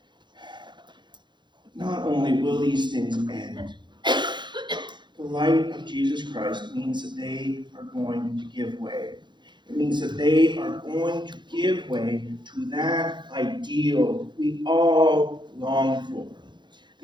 Not only will these things end, the light of Jesus Christ means that they are going to give way. It means that they are going to give way to that ideal we all long for.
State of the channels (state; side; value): late; left; 0.22 ms